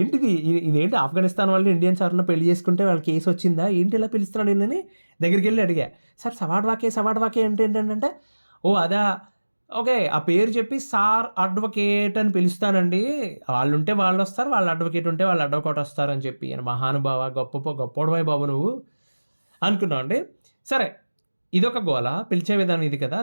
ఇదేంటి ఆఫ్ఘనిస్తాన్ వాళ్ళు ఇండియన్స్ ఎవరన్నా పెళ్లి చేసుకుంటే వాళ్ళ కేసు వచ్చిందా ఏంటి, ఇలా పిలుస్తున్నాడు ఏంటని దగ్గరికి వెళ్ళి అడిగా. సార్ సవాడ్వాకే అంటే ఏంటంటే, ఓ అదా, ఓకే, ఆ పేరు చెప్పి సార్ అడ్వకేట్ అని పిలుస్తానండి, వాళ్ళు ఉంటే వాళ్ళు వస్తారు, వాళ్ళ అడ్వకేట్ ఉంటే వాళ్ళు అడ్వకేట్ వస్తారని చెప్పి. మహానుభావ, గొప్పవాయి బాబు నువ్వు అనుకున్నావు అండి. సరే, ఇదొక గోల, పిలిచే విధానం ఇది కదా.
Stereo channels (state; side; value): inverted; both; correlation -1.00